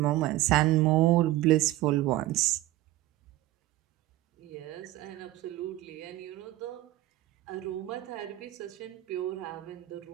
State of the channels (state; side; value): quieter; left; 16.0 dB